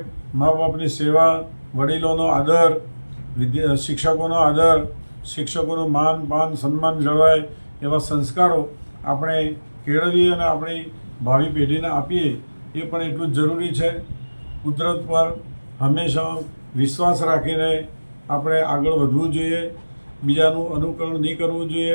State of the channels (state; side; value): inverted; both; correlation -1.00